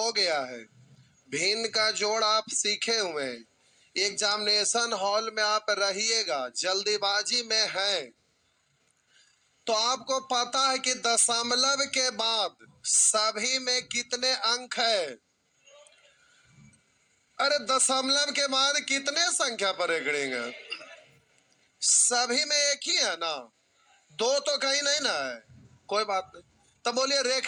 गया है, भिन्न का जोड़ आप सीखे हुए हैं, एग्जामिनेशन हॉल में आप रहिएगा, जल्दीबाजी में है, तो आपको पता है कि दशमलव के बाद सभी में कितने अंक है। अरे दशमलव के बाद कितने संख्या पर रेखड़ेंगे, सभी में एक ही है ना, 2 तो कहीं नहीं ना है, कोई बात नहीं। तो बोलिए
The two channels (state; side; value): identical; both; correlation 1.00